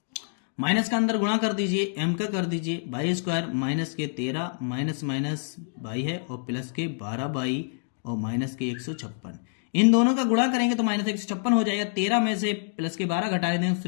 माइनस का अंदर गुणा कर दीजिए, m का कर दीजिए, बाई स्क्वायर माइनस के 13 माइनस माइनस बाई है और प्लस के 12 बाई और माइनस के 156। इन दोनों का गुणा करेंगे तो माइनस 156 हो जाएगा। 13 में से प्लस के 12 घटा देंगे,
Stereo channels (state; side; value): silent; right; 60 dB below the other